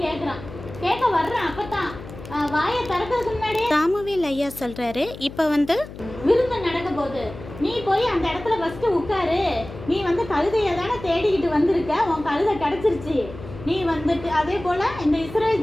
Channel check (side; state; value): left; noise; hum, 14 dB below the sound